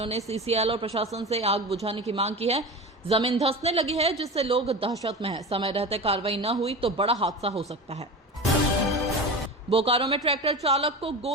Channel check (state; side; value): normal; both; correlation 0.29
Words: ने सीसीएल और प्रशासन से आग बुझाने की मांग की है। जमीन धंसने लगी है, जिससे लोग दहशत में हैं। समय रहते कार्रवाई न हुई तो बड़ा हादसा हो सकता है। बोकारो में ट्रैक्टर चालक को